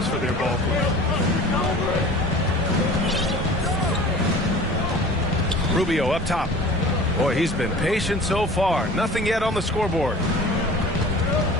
for their ball club. Rubio up top. Boy, he's been patient so far. Nothing yet on the scoreboard.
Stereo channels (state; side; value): normal; both; correlation 0.42